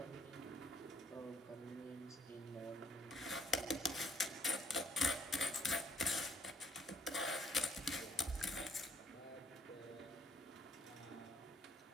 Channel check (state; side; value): normal; both; correlation 0.66